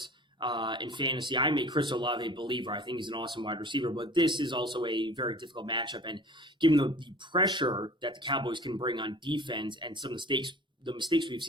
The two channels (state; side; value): normal; both; correlation 0.43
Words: in fantasy. I made Chris Olave a believer. I think he's an awesome wide receiver, but this is also a very difficult matchup. And given the pressure that the Cowboys can bring on defense and some mistakes, the mistakes we've